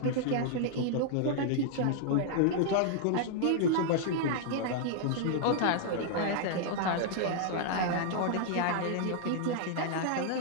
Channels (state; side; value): different; both; correlation -0.01